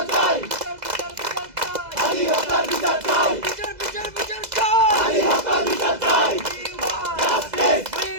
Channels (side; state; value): left; late; 2.0 ms